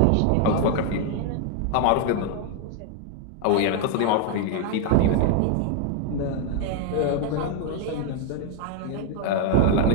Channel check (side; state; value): both; different; correlation 0.01